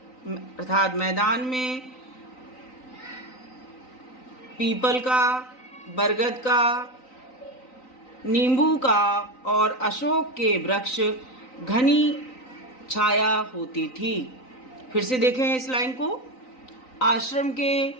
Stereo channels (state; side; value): late; right; 3.9 ms